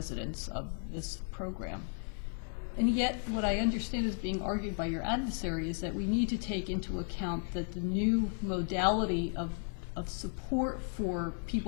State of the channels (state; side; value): silent; right; 55 dB below the other